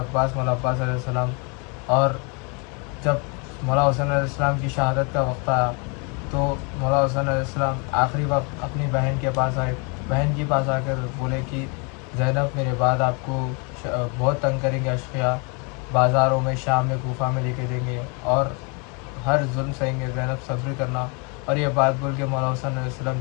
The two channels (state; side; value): quieter; right; 33.7 dB